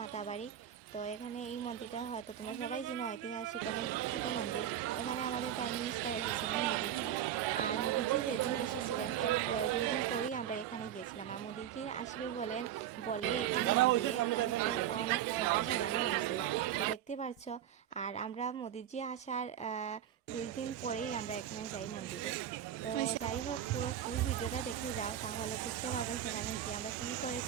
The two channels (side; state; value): left; quieter; 10.5 dB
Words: মাতাবাড়ি। তো এখানে এই মন্দিরটা হয়তো তোমরা সবাই জানো, ঐতিহাসিক অনেক বিখ্যাত মন্দির। এখানে আমাদের প্রাইম মিনিস্টার এসেছিলেন মোদিজি। আর মোদিজি যেদিন এসেছিলেন এর 2 দিন পরেই আমরা এখানে গিয়েছিলাম। আর মোদিজি আসবে বলে এখানে মন্দিরে অনেক ফুল সাজানো হয়েছিল, তো দেখতে পাচ্ছ। আর আমরা মোদিজি আসার 2 দিন পরেই আমরা এখানে যাই মন্দিরে। তো যাই হোক, পুরো ফুল ভিডিওটা দেখে যাও, তাহলে বুঝতে পারবে সেখানে কি আমরা কী